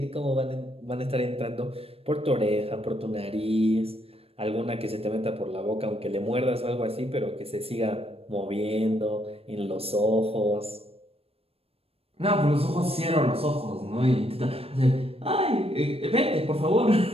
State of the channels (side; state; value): left; late; 0.28 ms